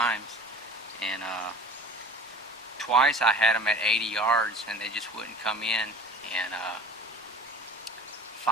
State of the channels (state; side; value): normal; both; correlation 0.42